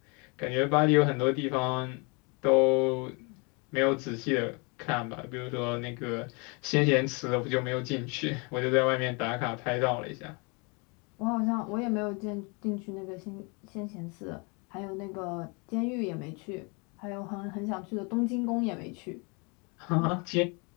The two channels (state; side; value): quieter; right; 31.7 dB